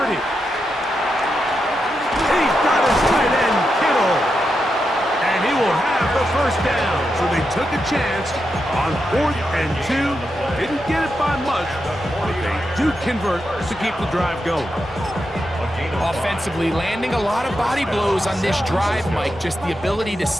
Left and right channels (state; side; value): normal; both; correlation 0.86